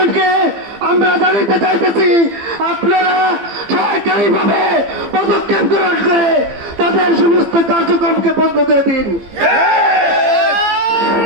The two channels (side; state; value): left; late; 15 ms